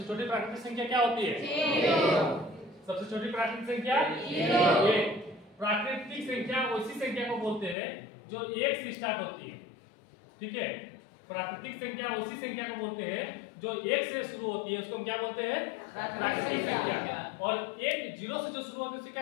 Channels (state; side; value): drops out; right; at 7.8 s